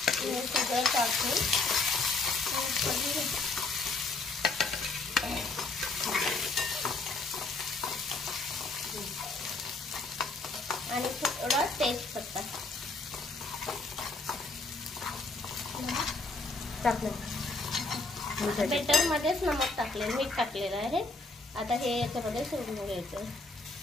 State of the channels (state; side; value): quieter; right; 3.4 dB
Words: सगळं टाकून आणि थोडा तेजपत्ता टाकलं। बेटर मध्येच नमक टाकले, मीठ टाकलेलं आहे। आता हे याच्यामध्ये सोडून घ्यायचं